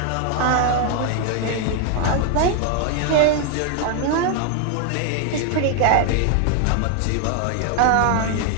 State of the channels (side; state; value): both; different; correlation 0.00